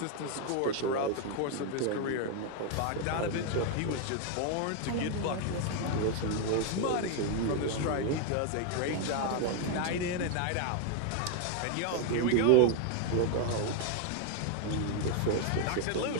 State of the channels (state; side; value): different; both; correlation 0.01